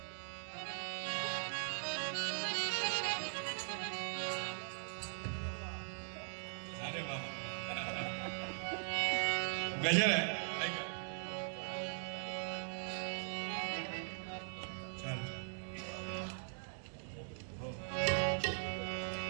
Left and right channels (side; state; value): left; silent; digital silence